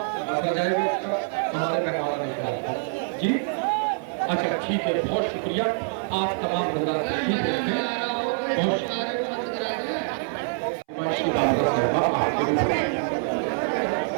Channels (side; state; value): left; silent; 59 dB below the other